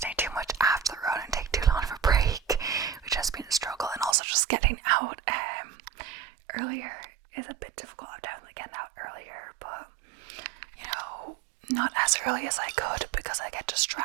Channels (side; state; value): left; drops out; at 4.2 s